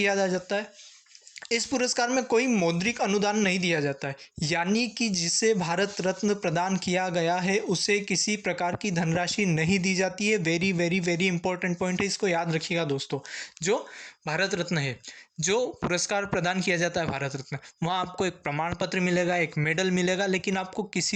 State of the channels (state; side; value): identical; both; correlation 1.00